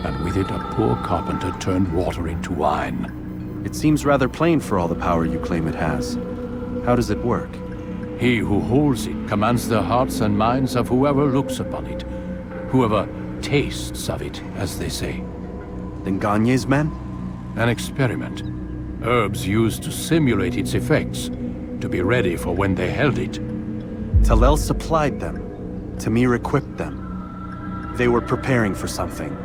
and with it a poor carpenter turned water into wine. It seems rather plain for all the power you claim it has. How does it work? He who holds it commands the hearts and minds of whoever looks upon it, whoever tastes of it, as they say. Then Gagne's men? An experiment. Herbs used to simulate its effects, to be ready for when they held it. Talel supplied them. Tamir equipped them. They were preparing for something.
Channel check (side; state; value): both; identical; correlation 1.00